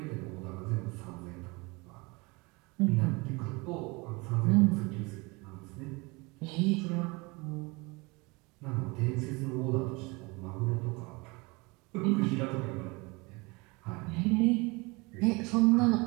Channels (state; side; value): quieter; left; 26.2 dB